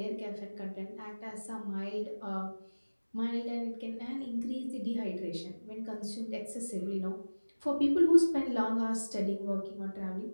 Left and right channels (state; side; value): inverted; both; correlation -1.00